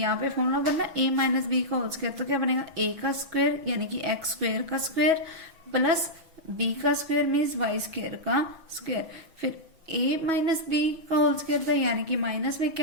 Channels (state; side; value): late; left; 6.1 ms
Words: पे फॉर्मूला बनना A - B का होल स्क्वायर, तो क्या बनेगा A का स्क्वायर यानी कि x² का स्क्वायर प्लस B का स्क्वायर मीन्स y² का स्क्वायर, फिर A - B का होल स्क्वायर था यानी कि माइनस में